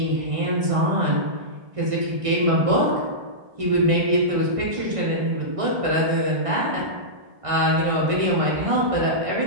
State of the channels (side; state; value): left; late; 1.6 ms